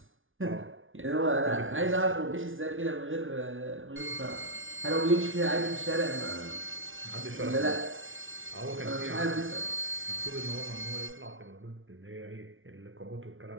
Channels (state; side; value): late; left; 0.57 ms